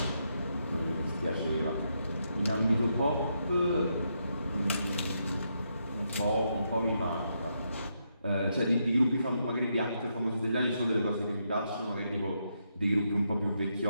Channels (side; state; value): both; inverted; correlation -0.80